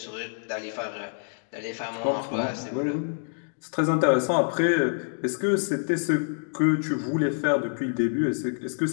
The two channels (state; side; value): silent; right; digital silence